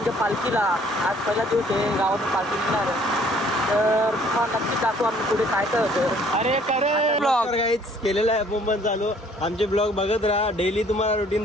पालखीला. आज पहिला दिवस आहे गावातून पालखी निघणार आहे. तर तुम्हाला नक्की दाखवू आम्ही पुढे काय काय होतं. अरे करे ब्लॉग गाईच केलेला आहे मुंबई चालू. आमचे ब्लॉग बघत राहा, डेली तुम्हाला रुटीन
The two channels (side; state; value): both; normal; correlation 0.59